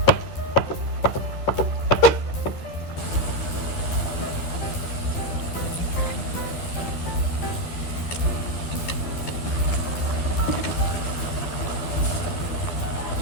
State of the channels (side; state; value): right; late; 12 ms